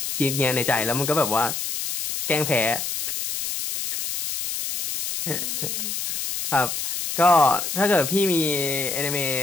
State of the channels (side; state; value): left; noise; hiss, 4 dB below the sound